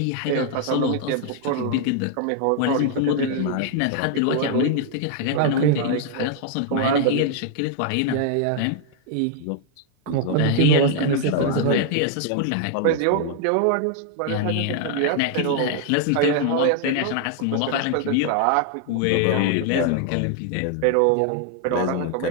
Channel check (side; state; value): both; different; correlation 0.00